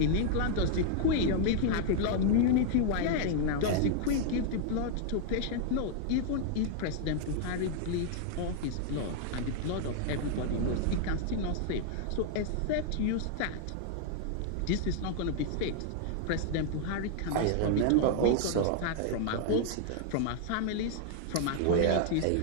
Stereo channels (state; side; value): different; both; correlation 0.00